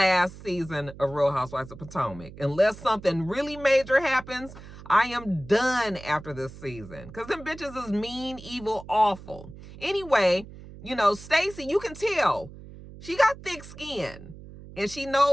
season of Real Housewives of Potomac. Unless something really major happens, I am done after this season. Because them bitches is mean, evil, awful. Anyway, you know, Stacey, you can tell she got thick skin. And she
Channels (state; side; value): noise; right; hum, 16 dB below the sound